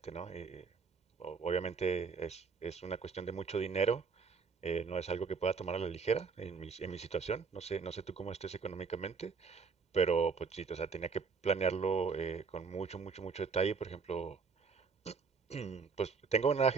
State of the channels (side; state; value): left; quieter; 5.2 dB